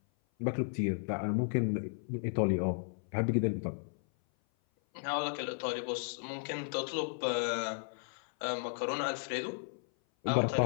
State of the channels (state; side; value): silent; right; 55 dB below the other